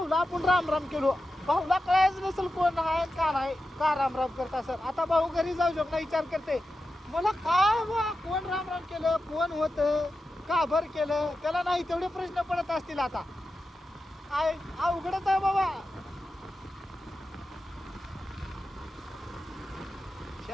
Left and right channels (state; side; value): normal; both; correlation 0.91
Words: आपण राम राम केलो भाऊला कळायच नसेल कोण आहे का नाही का राम राम करता सर. आता भाऊ घरी जाऊ शकता विचार करते मला काय बा कोण राम राम केलं कोण होतं का भर केलं त्याला नाही तेवढे प्रश्न पडत असतील. आता अवघडच आहे बाबा.